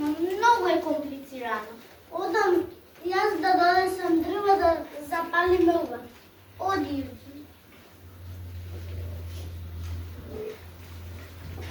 многу е комплицирано. Одам јас да донесам дрва да запалиме ова. Оди.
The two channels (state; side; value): identical; both; correlation 1.00